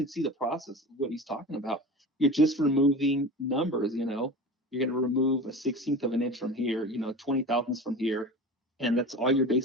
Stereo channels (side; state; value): both; normal; correlation 0.33